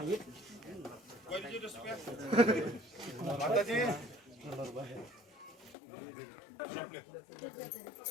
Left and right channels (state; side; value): drops out; right; at 5.8 s